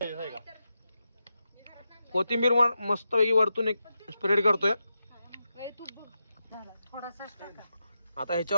कोथिंबीर मस्त पैकी वरतून एक स्प्रेड करतोय. आता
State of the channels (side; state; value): both; inverted; correlation -0.89